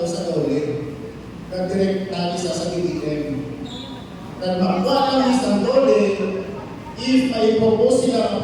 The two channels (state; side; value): identical; both; correlation 1.00